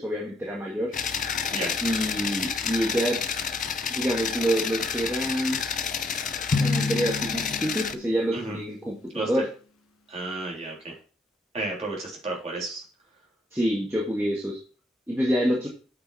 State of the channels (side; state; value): both; normal; correlation 0.71